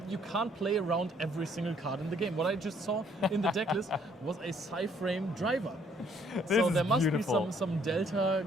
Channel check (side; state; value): both; normal; correlation 0.64